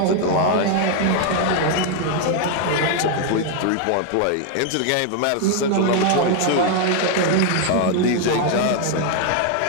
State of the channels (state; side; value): different; both; correlation 0.00